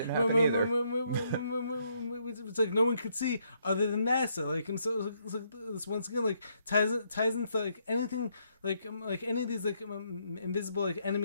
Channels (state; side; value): inverted; both; correlation -0.73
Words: happen It's like no one could see other than NASA. Like and so this once again like ties into like anything like any of these like invisible like